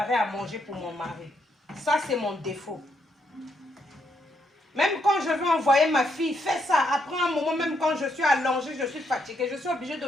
à manger pour mon mari. Ça, c'est mon défaut. Même quand je veux envoyer ma fille, fais ça. Après un moment, même quand je suis allongée, je suis fatiguée, je suis obligée de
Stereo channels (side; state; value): both; normal; correlation 0.77